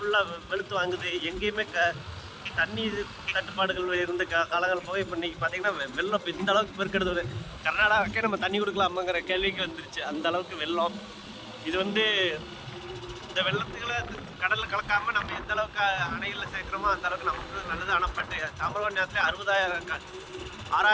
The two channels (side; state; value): both; identical; correlation 1.00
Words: வெளுத்து வாங்குது. எங்கேயுமே தண்ணி தட்டுப்பாடுகள் இருந்த காலங்கள் போய் இப்போ இன்றைக்கி பார்த்திங்கன்னா வெள்ளம் இந்த அளவுக்கு பெருக்கெடுது. கர்நாடகாக்கே நம்ம தண்ணி கொடுக்கலாமாங்கிற கேள்விக்கு வந்துருச்சு, அந்த அளவுக்கு வெள்ளம். இது இந்த வெள்ளத்துக்களை கடலில் கலக்காமல் நம்ம எந்த அளவுக்கு அணைகளில் சேர்க்குறோமோ அந்த அளவுக்கு நமக்கு நல்லது. ஆனால் பட்டு தாமிரபரணி நேரத்தில்